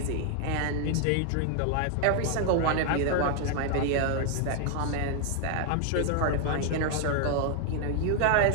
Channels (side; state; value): both; different; correlation 0.00